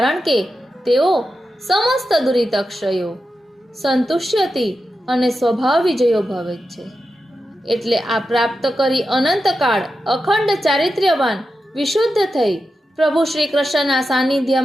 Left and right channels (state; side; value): normal; both; correlation 0.90